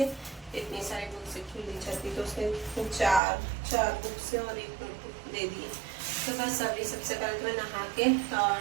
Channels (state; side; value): drops out; left; at 3.2 s